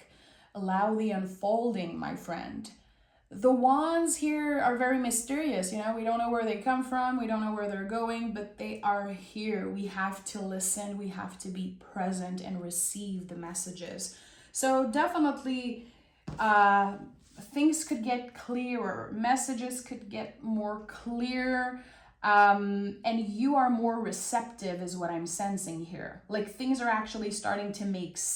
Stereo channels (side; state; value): both; identical; correlation 1.00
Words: Allow the unfolding, my friend. The wands here are very mysterious. We don't know where they come from. We don't know where they're going, but they are here. We have to listen. We have to be present and receive the messages. So definitely things could get clearer. Messages could get more clear. And you are more receptive is what I'm sensing here. Like things are actually starting to make